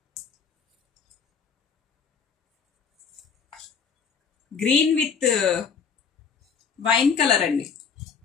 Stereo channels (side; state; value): right; quieter; 6.2 dB